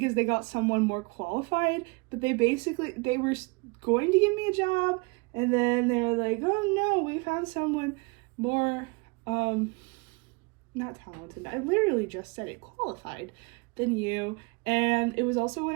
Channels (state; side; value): quieter; left; 28.7 dB